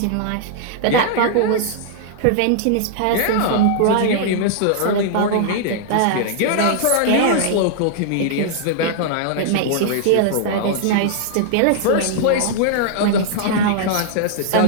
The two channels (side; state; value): both; different; correlation -0.01